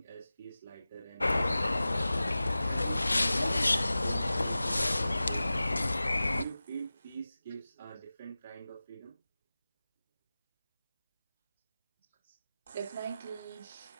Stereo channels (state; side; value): inverted; both; correlation -0.96